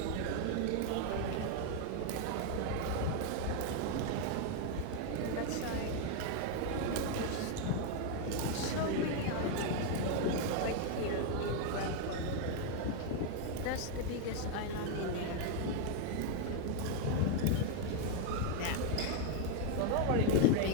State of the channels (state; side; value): different; both; correlation 0.01